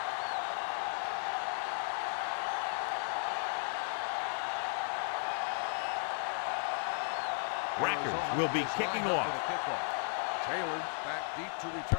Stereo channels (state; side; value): silent; right; 54 dB below the other